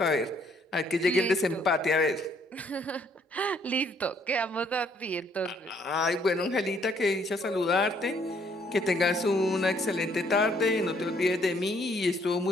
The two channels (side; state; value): both; normal; correlation 0.66